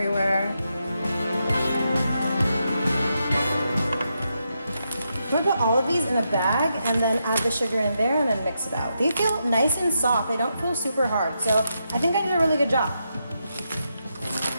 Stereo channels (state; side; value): inverted; both; correlation -0.83